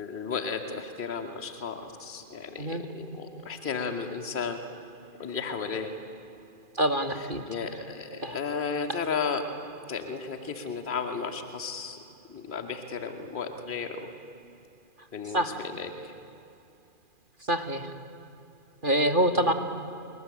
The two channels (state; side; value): late; left; 2.4 ms